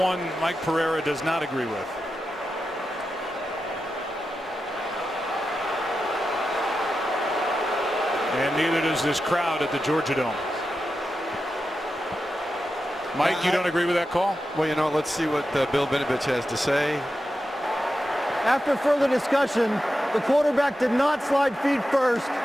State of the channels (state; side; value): normal; both; correlation 0.90